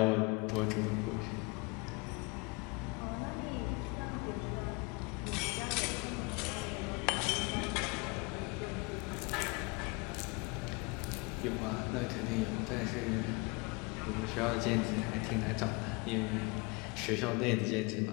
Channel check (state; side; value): quieter; right; 28.4 dB